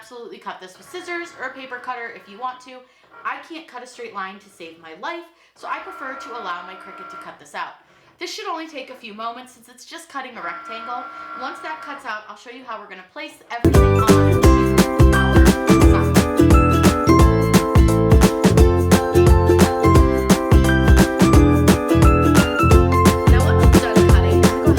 cut this with scissors or a paper cutter if you want to. I can't cut a straight line to save my life, so I prefer to allow my Cricut to cut this out. This should only take a few moments since it's just cutting a rectangle. Once that cuts out, I'll show you how we're going to place everything on our sign. Now once it's done cutting, go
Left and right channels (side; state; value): both; identical; correlation 1.00